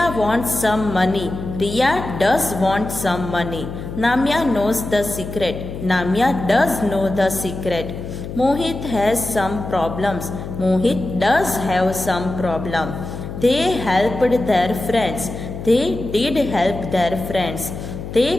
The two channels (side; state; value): left; noise; hum, 8 dB below the sound